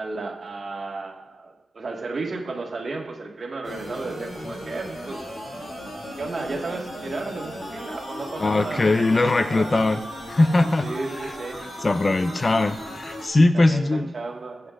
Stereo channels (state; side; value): normal; both; correlation 0.95